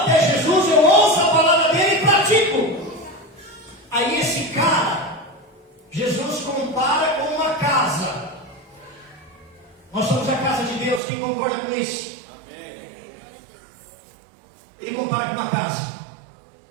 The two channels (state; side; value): drops out; left; at 11.0 s